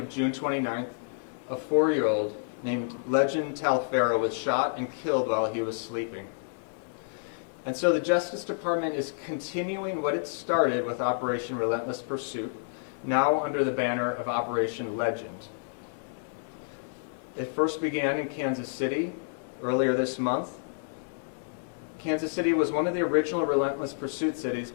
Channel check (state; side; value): silent; right; digital silence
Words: June 29th, a 4-year-old named Legend Talfero was shot and killed while he was sleeping. And so the Justice Department is continuing what it started with Operation Relentless Pursuit, now under the banner of Operation Legend. It first began in Kansas City earlier this month. Kansas City was one of the original Relentless Pursuit cities,